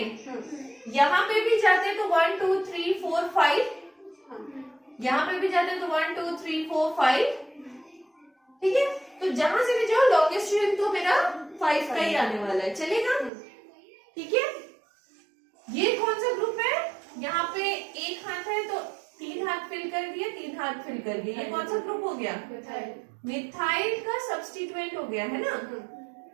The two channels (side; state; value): left; drops out; at 13.3 s